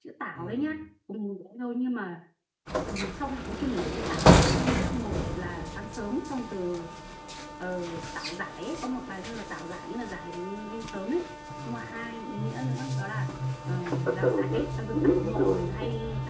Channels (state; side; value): identical; both; correlation 1.00